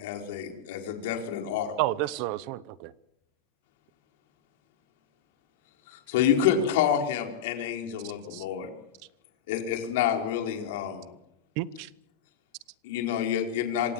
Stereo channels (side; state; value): right; quieter; 5.6 dB